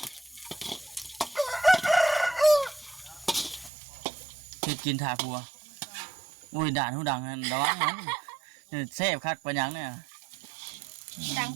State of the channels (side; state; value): left; drops out; at 3.7 s